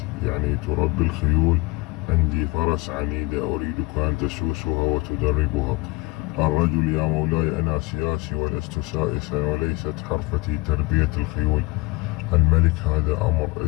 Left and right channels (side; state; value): right; quieter; 23.4 dB